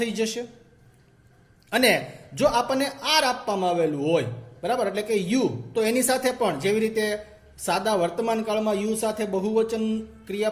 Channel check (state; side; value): identical; both; correlation 1.00